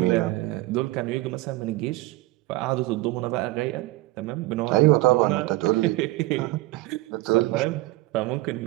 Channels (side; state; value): left; quieter; 19.0 dB